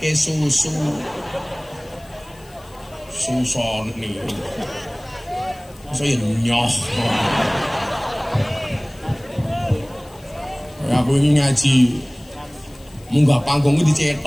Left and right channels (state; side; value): noise; left; hiss, 26 dB below the sound